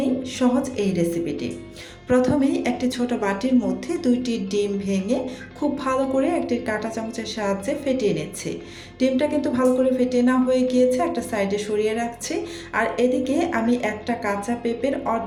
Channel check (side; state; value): both; identical; correlation 1.00